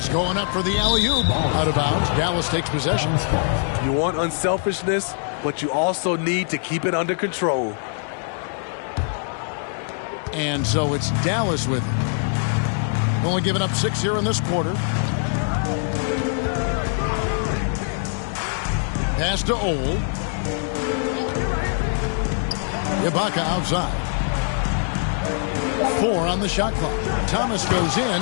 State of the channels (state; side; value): silent; right; 64 dB below the other